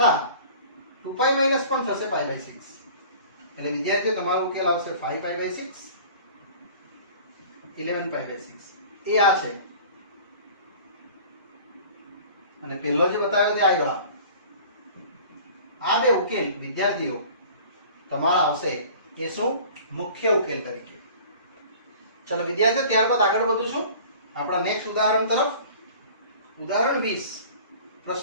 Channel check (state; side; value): inverted; both; correlation -0.45